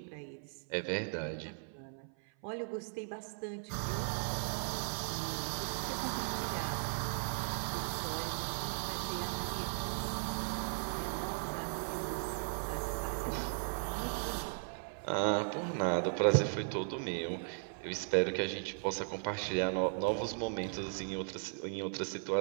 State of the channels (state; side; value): silent; left; 53 dB below the other